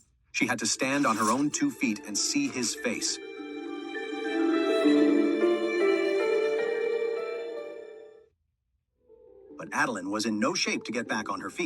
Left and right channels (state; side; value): identical; both; correlation 1.00